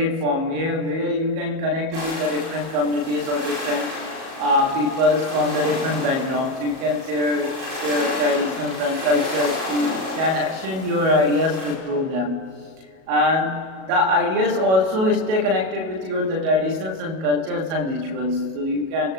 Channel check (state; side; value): late; left; 37 ms